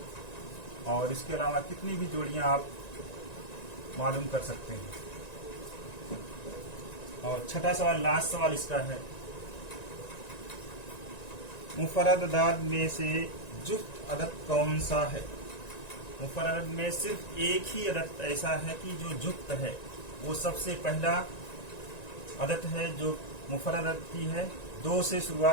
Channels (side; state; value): right; late; 1.9 ms